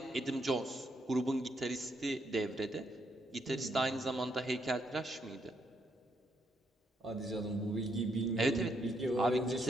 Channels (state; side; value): normal; both; correlation 0.76